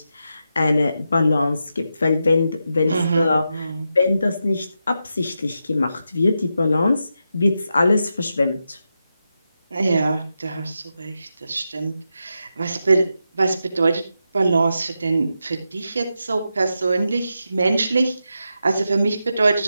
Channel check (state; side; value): inverted; both; correlation -0.87